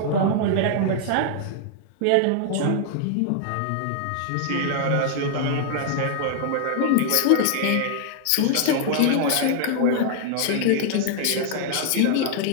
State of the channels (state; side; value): different; both; correlation -0.01